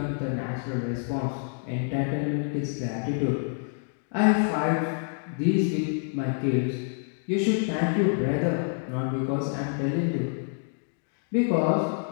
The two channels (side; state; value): right; silent; 60 dB below the other